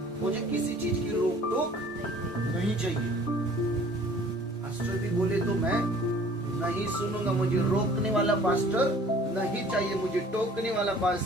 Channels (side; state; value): both; normal; correlation 0.52